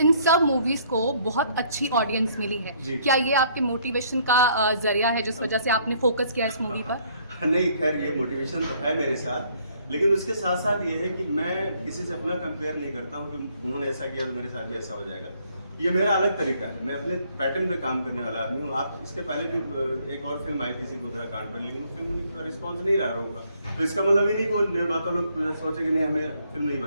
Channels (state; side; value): inverted; both; correlation -0.65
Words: सब मूवीज़ को बहुत अच्छी ऑडियंस मिली है। क्या ये आपके मोटिवेशन का जरिया है जिस वजह से आपने फोकस किया इस मूवी पर? नहीं, खैर ये मोटिवेशन तो है मेरे साथ, लेकिन उसके साथ साथ ये है कि मैं किसी से अपना कंपेयर नहीं करता हूँ कि उन्होंने ऐसा किया तो मेरे साथ भी ऐसा हो जाएगा। ये मेरा अलग तरीका है, मैं अपने पैटर्न पे काम करने वाला आदमी हूँ। आप इसके पहले भी एक और फिल्म आई थी गोधरा कांड पर, लेकिन वो फिल्म का रिस्पॉन्स नहीं रहा होगा, तो इसका मतलब ये नहीं कि वो निर्माता लोग सोचे कि नहीं हमें फिल्म नहीं